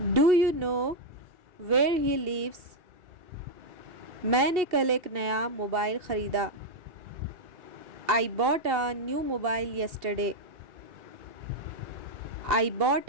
Do you know where he lives? मैंने कल एक नया मोबाइल ख़रीदा। I bought a new mobile yesterday. I bought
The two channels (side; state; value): left; late; 2.7 ms